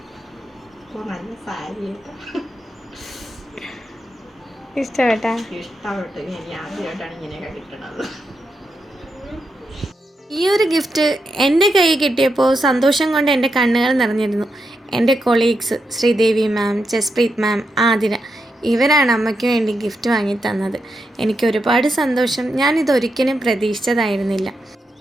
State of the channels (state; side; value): normal; both; correlation 0.85